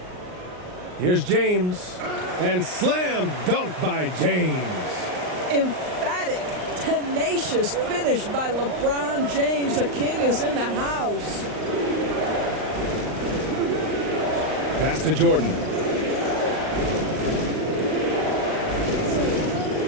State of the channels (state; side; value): late; left; 39 ms